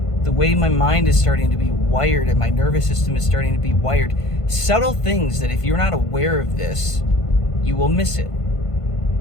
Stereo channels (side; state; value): right; late; 1.5 ms